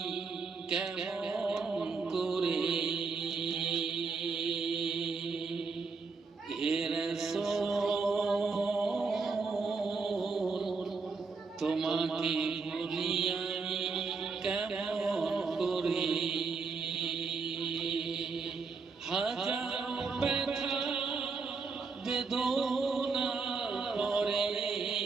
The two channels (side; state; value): left; quieter; 4.6 dB